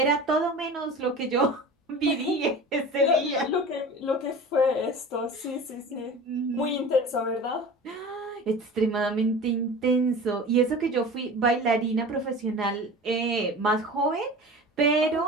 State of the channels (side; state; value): both; normal; correlation 0.36